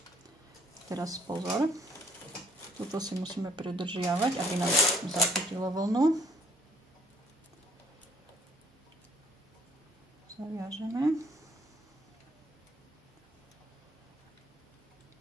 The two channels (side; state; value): both; normal; correlation 0.63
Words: Teraz pozor, tuto si musíme pridržiavať, aby nám zachytilo vlnu. Zaviažeme.